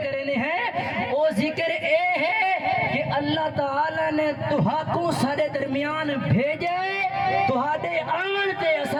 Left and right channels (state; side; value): identical; both; correlation 1.00